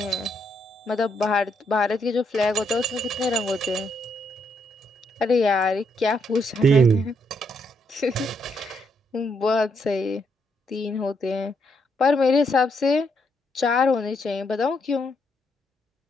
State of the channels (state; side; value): normal; both; correlation 0.76